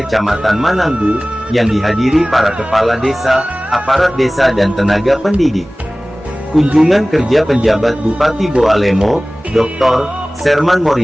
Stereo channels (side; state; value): both; normal; correlation 0.98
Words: Mananggu, yang dihadiri para kepala desa, aparat desa dan tenaga pendidik. Kunjungan kerja penjabat Bupati Boalemo, Dr. Serman